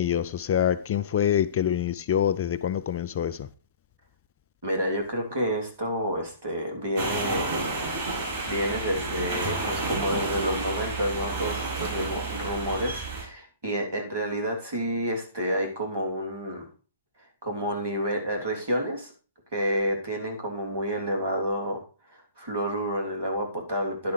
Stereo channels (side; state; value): both; inverted; correlation -0.45